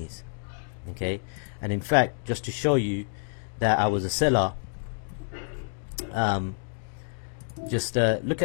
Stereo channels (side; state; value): right; silent; digital silence